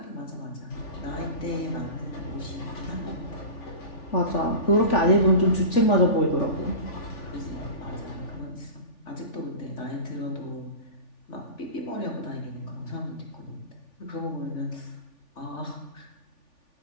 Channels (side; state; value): right; late; 3.5 ms